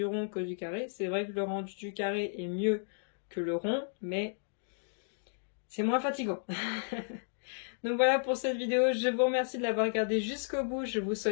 rond que du carré. C'est vrai que le rendu du carré est mieux que le rond, mais c'est moins fatigant. Donc voilà pour cette vidéo. Je vous remercie de l'avoir regardée jusqu'au bout. Je vous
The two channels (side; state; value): right; silent; digital silence